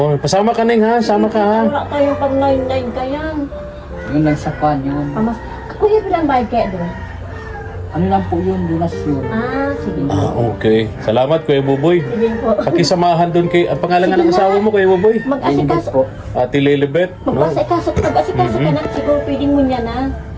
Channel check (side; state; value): both; identical; correlation 1.00